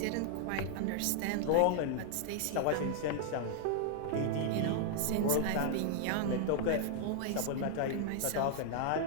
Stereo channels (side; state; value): both; different; correlation -0.01